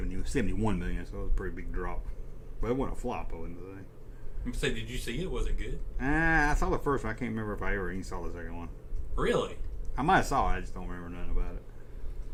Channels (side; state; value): both; identical; correlation 1.00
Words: million, so it was a pretty big drop. But it wasn't a flop, I wouldn't say. I'm say, did you see it? Was it good? I saw the first one. I can't remember if I ever even saw the second one. Really? I might have saw it. I just don't remember nothing about it.